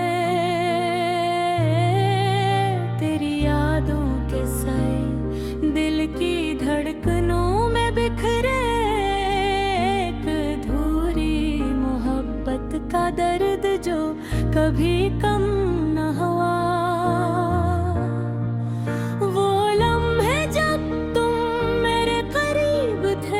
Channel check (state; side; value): identical; both; correlation 1.00